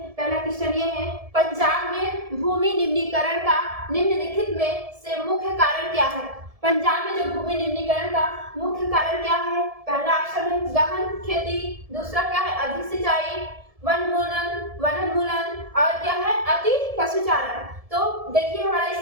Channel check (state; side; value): late; left; 1.7 ms